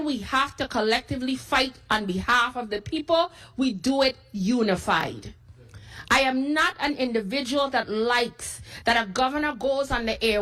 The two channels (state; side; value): identical; both; correlation 1.00